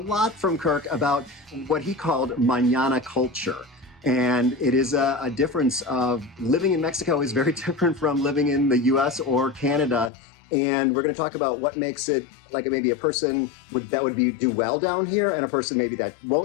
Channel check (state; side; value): drops out; right; at 10.1 s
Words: from Kirk about what he called mañana culture. And it is a difference of living in Mexico is very different from living in the US or Canada. And we're going to talk about what makes it like maybe a person that would do well down here and a person maybe that